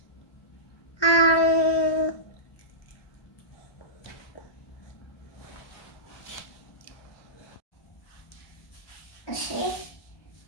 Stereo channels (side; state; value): right; late; 1.2 ms